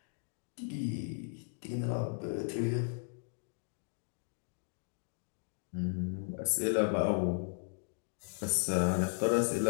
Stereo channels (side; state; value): right; silent; digital silence